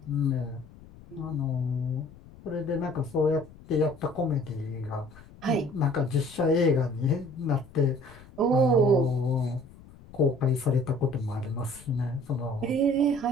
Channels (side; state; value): left; noise; rumble, 21 dB below the sound